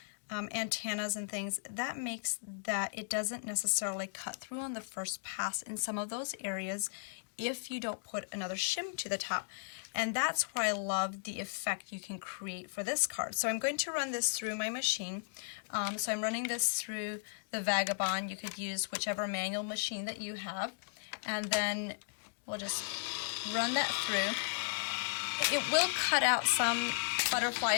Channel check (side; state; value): right; silent; digital silence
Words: antennas and things, that makes that it doesn't necessarily cut through on the first pass in some of those areas if you don't put another shim to the top. And that's where I love the effect you can create for this card. So I'm going to run this through my machine. So I'm running this through the Vagabond. You could use whichever manual machine that you have. And then we'll just run that through. It will cut out some